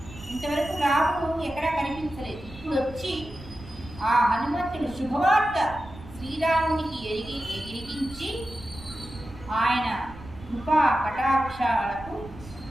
ఇంతవరకు రాముడు ఎక్కడా కనిపించలేదు. ఇప్పుడు వచ్చి ఆ హనుమంతుడు శుభవార్త శ్రీరామునికి ఎరిగించి ఆయన కృపా కటాక్షాలకు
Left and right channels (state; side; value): noise; right; rumble, 16 dB below the sound